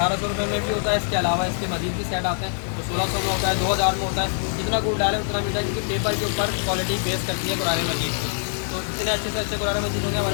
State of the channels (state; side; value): silent; right; digital silence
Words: रुपये में भी होता है। इसके अलावा इसके मजीद भी सेट आते हैं तो 1600 में होता है, 2000 में होता है। जितना गुड़ डालें उतना मीठा, क्योंकि पेपर के ऊपर क्वालिटी बेस करती है कुरान मजीद की। तो इतने अच्छे से अच्छे कुरान मजीद होंगे